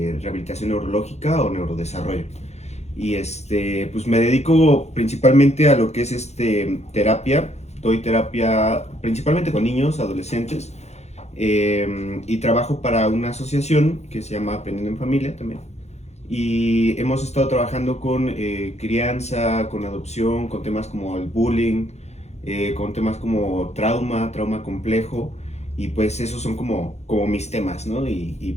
rehabilitación neurológica o neurodesarrollo. Y pues me dedico principalmente a lo que es terapia. Doy terapia principalmente con niños, adolescentes, y trabajo para una asociación que se llama Aprendiendo en Familia también. Y hemos estado trabajando con crianza, con adopción, con temas como el bullying, con temas como trauma complejo, y pues esos son como mis temas, ¿no?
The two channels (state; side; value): late; right; 0.32 ms